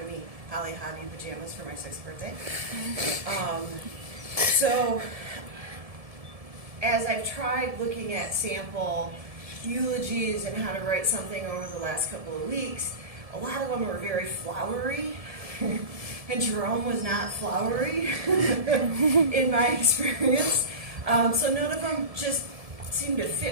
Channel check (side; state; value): left; late; 1.7 ms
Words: me Holly Hobby pajamas for my 6th birthday. So, as I've tried looking at sample eulogies and how to write something over the last couple of weeks, a lot of them were very flowery. And Jerome was not flowery in my experience. So none of them just seemed to